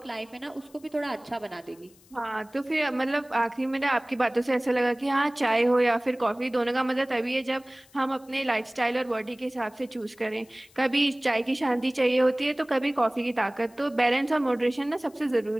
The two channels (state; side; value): noise; left; hiss, 28 dB below the sound